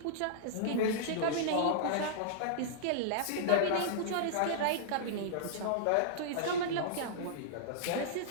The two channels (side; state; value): both; different; correlation -0.02